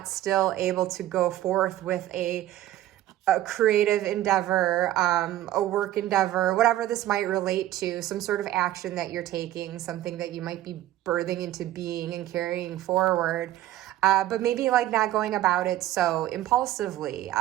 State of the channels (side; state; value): left; quieter; 14.0 dB